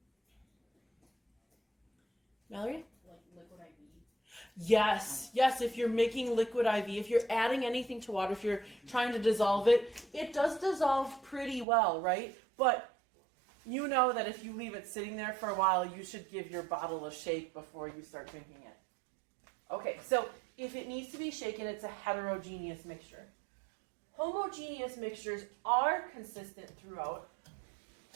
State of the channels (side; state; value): left; drops out; at 11.7 s